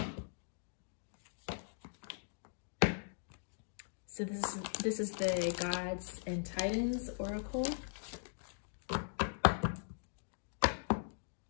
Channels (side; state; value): right; silent; digital silence